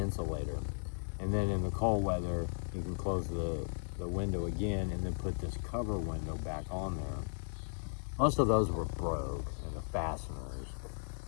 And then in the cold weather, you can close the window again and then put this cover window back on there. Most of those were broke, and the fasteners.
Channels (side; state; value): right; silent; 54 dB below the other